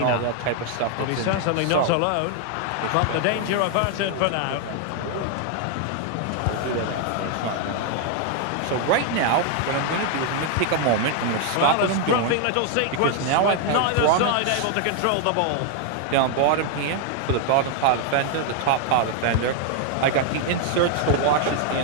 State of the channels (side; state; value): both; different; correlation 0.00